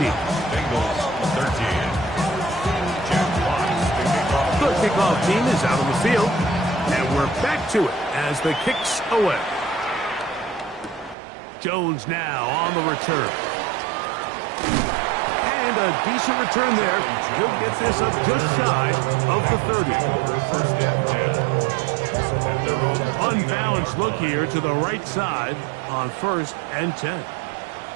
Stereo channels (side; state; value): left; drops out; at 11.2 s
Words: Bangles 13. The kickoff team is out on the field. And we're back to it as the kick's away. Jones now on the return. And a decent return there. He'll get this up just shy of the 30. First and 10. Unbalanced look here to the right side on 1st and 10.